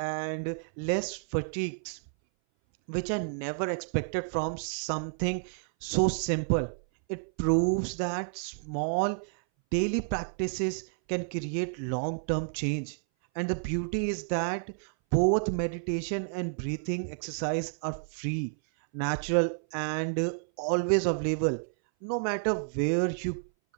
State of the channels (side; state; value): left; silent; 58 dB below the other